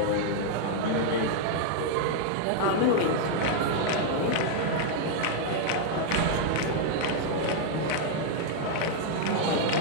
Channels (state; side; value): different; both; correlation 0.00